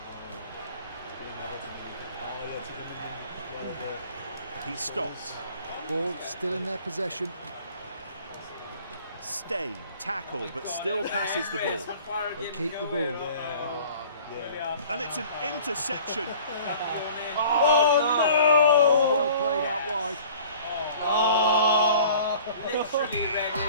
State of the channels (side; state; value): both; inverted; correlation -0.48